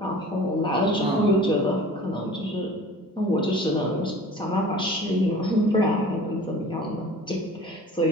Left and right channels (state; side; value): normal; both; correlation 0.43